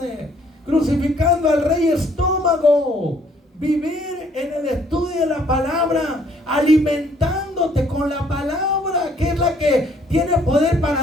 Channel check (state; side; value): normal; both; correlation 0.63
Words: crucificando al rey estómago. Vivir en el estudio de la palabra, alimentándote con la palabra, que es la que tiene poder